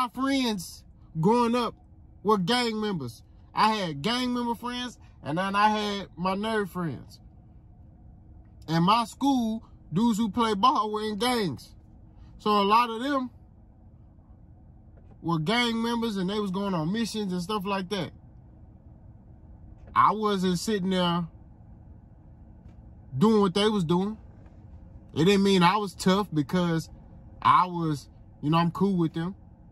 friends growing up were gang members. I had gang member friends, and then I had my nerd friends. And my school, dudes who play ball were in gangs. So a lot of them were gang members, and they was going on missions and stuff like that. I wasn't sitting there doing what they was doing. It didn't mean I was tough because I was, you know, I'm cool with them.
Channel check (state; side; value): identical; both; correlation 1.00